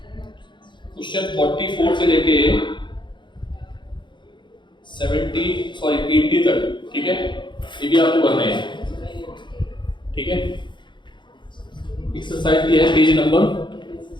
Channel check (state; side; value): late; right; 0.23 ms